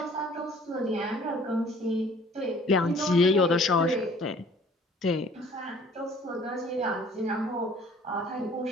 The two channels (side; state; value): both; normal; correlation 0.53